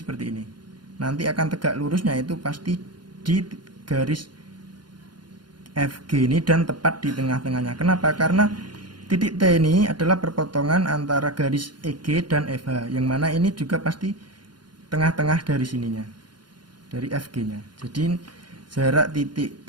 ini. Nanti akan tegak lurusnya itu pasti di garis FG ini dan tepat di tengah-tengahnya. Kenapa? Karena titik T ini adalah perpotongan antara garis EG dan FH, yang mana ini juga pasti tengah-tengah dari sininya, dari FG-nya. Jadi jarak titik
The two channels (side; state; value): left; late; 0.71 ms